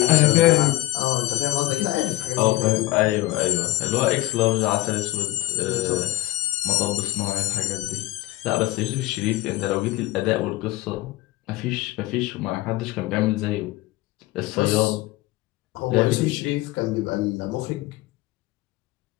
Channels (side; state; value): right; quieter; 17.3 dB